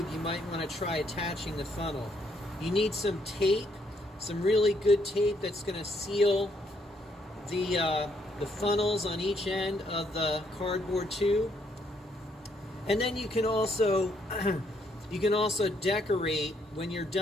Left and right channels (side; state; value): both; normal; correlation 0.71